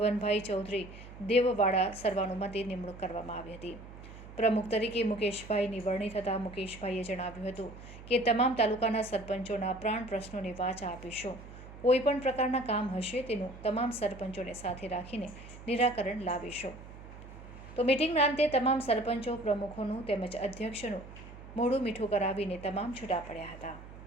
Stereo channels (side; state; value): right; noise; hum, 16 dB below the sound